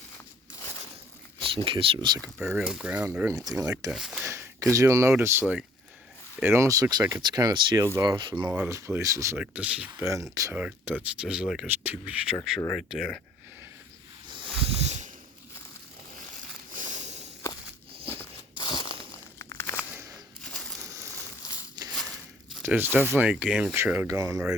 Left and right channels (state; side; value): normal; both; correlation 0.58